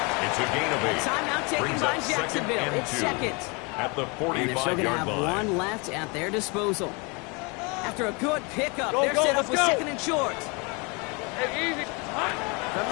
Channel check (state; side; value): quieter; right; 30.3 dB